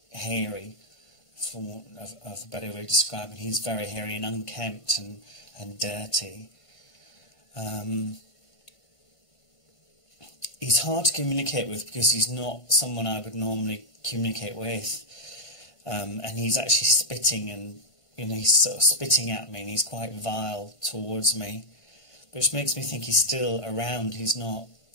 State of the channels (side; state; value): right; late; 1.5 ms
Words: hairy, for want of a better way of describing. He's very hairy and unkempt and dirty. He's hard to communicate with because he's not someone I would normally communicate with. And he's actually spitting, and he's sort of spitting at me, and he's quite vile towards me, which makes me think he's still around. He's not.